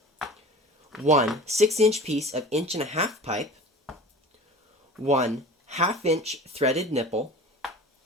1 6-inch piece of 1.5 inch pipe. 1 1/2 inch threaded nipple.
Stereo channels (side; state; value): both; normal; correlation 0.39